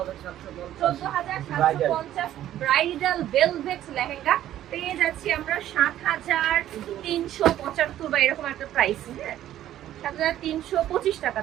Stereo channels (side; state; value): left; quieter; 12.4 dB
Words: ব্রাইডাল ভেলভেট লেহেঙ্গা পেয়ে যাচ্ছি আমরা 7375 বা এরকম একটা প্রাইস। হ্যাঁ, 7325